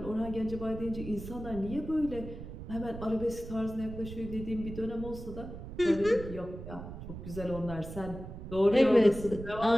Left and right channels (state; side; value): noise; right; rumble, 10 dB below the sound